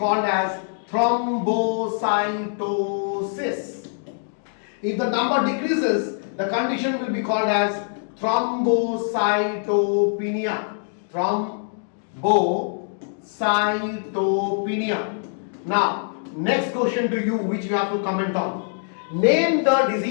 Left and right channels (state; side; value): silent; right; digital silence